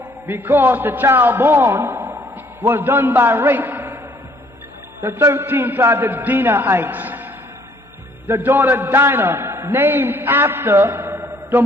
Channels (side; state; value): both; normal; correlation 0.62